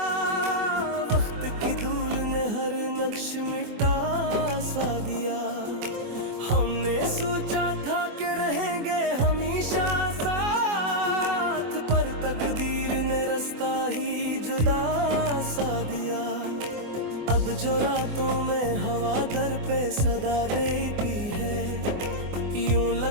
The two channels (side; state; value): left; late; 24 ms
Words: वक्त की धूल ने हर नक्श मिटा सा दिया। हमने सोचा था कि रहेंगे हमेशा साथ, पर तकदीर ने रास्ता ही जुदा सा दिया। अब जो रातों में हवा दर पे सदा देती है, यूं